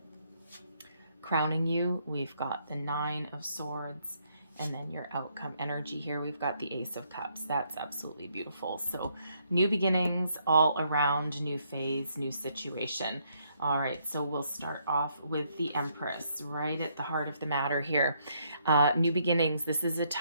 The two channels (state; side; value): inverted; both; correlation -0.72